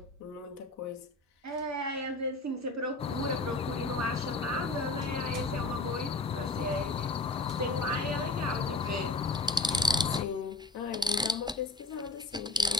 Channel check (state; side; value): quieter; right; 3.1 dB